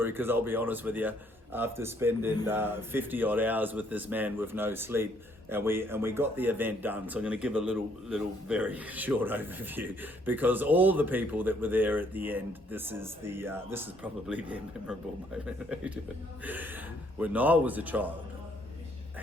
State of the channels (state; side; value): normal; both; correlation 0.67